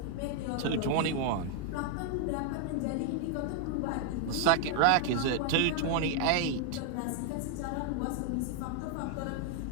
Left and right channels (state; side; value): different; both; correlation 0.00